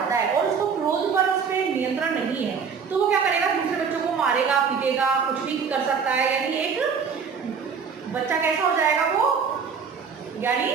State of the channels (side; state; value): left; quieter; 6.1 dB